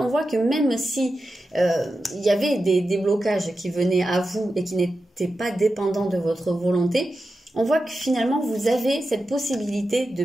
voit que même si il y avait des blocages qui venaient à vous et qui n'étaient pas dépendants de votre volonté, on voit que finalement, vous avez cette possibilité de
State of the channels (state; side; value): normal; both; correlation 0.91